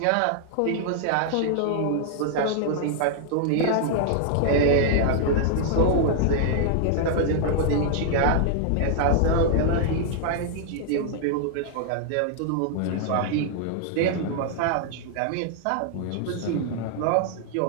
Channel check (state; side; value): different; both; correlation 0.00